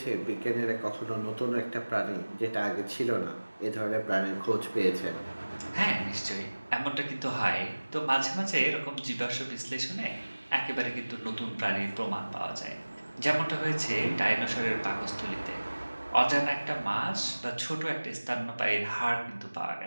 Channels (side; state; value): both; inverted; correlation -1.00